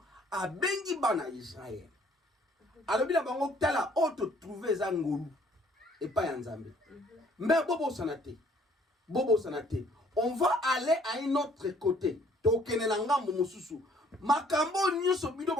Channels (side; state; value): both; normal; correlation 0.60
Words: a bengi bana Israël. Alors, il a bango tala auto trouvé zangolu et pas yanzambe. Mais bobo sanate, on va aller à un autre côté. Tokene nanga momususu. Makambo nyuso bido